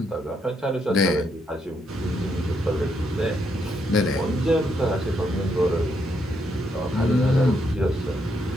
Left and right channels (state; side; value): normal; both; correlation 0.77